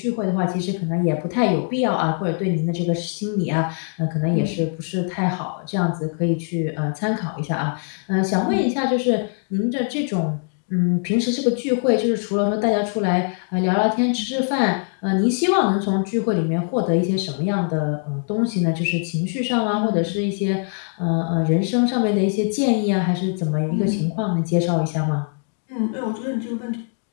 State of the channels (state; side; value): silent; right; 55 dB below the other